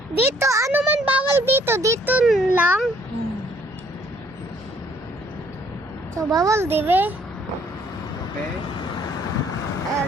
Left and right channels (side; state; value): both; normal; correlation 0.62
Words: Dito, ano man bawal dito? Dito lang. So, bawal, di ba? Okay?